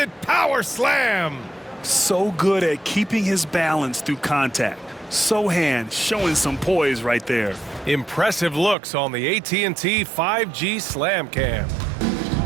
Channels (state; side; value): drops out; left; at 8.8 s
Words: power slam. So good at keeping his balance through contact. Sohan showing some poise right there. Impressive looks on the AT&T 5G Slam Cam.